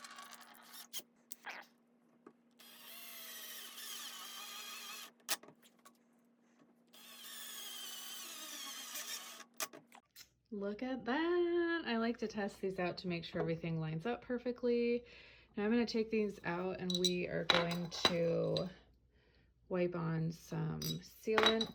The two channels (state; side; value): identical; both; correlation 1.00